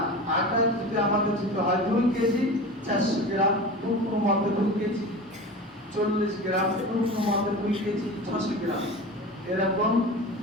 আটা যদি আমাদের যদি হয় 2 কেজি 400 গ্রাম, কোনো মতে 2 কেজি 40 গ্রাম, কোনো মতে 2 কেজি 600 গ্রাম, এরকম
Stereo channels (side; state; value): both; normal; correlation 0.32